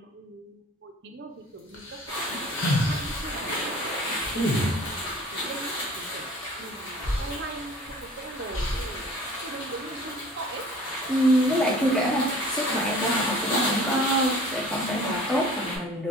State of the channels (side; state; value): both; normal; correlation 0.47